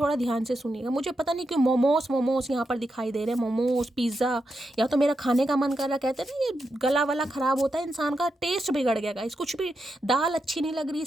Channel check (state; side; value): normal; both; correlation 0.86